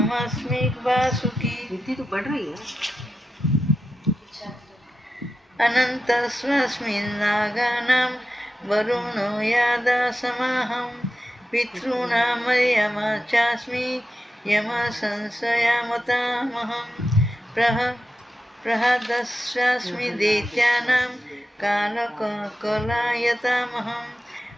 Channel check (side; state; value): both; normal; correlation 0.90